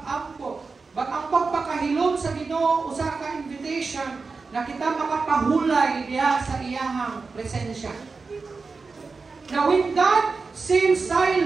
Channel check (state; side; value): quieter; left; 4.4 dB